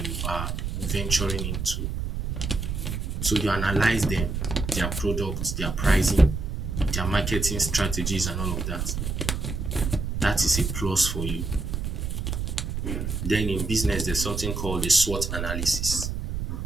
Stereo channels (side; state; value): right; noise; rumble, 3 dB below the sound